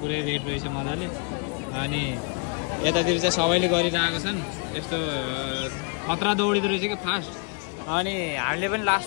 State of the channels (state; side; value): quieter; right; 34.8 dB